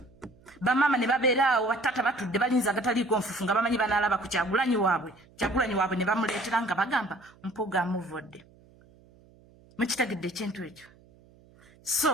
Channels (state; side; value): noise; right; hum, 28 dB below the sound